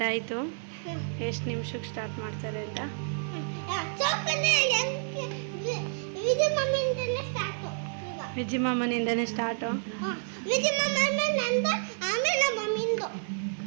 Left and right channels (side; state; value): left; silent; digital silence